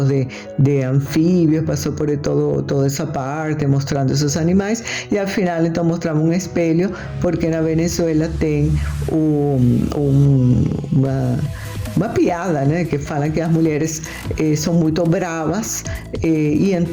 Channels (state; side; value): identical; both; correlation 1.00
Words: de anfíbios, passou por toda essa parte mostrando esses animais, e ao final então mostrava um espelho, porque na Venezuela tem uma piada, né, que falam que as mulheres são muito bravas, e